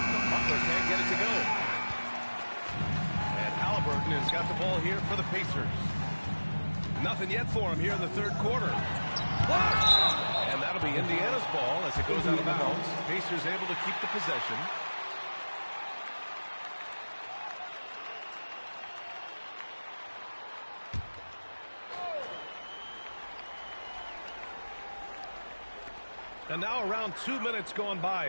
Butler can't get it to go. And Halliburton has got the ball here for the Pacers. Nothing yet for him here in the third quarter. And that'll be Indiana's ball as it goes out of bounds. Pacers able to keep the possession. And now around 2 minutes gone by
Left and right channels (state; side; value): inverted; both; correlation -1.00